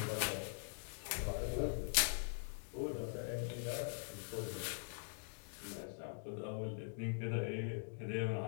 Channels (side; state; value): right; silent; digital silence